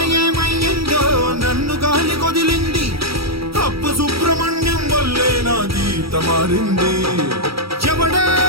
ఏమయ్యిందో నన్ను గాలి కొదిలింది, అప్పు సుబ్రహ్మణ్యం వల్లే నా గీత మారింది. ఎవడే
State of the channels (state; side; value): late; left; 0.76 ms